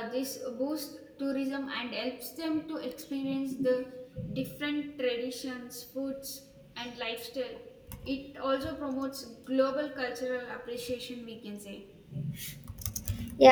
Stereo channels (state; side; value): identical; both; correlation 1.00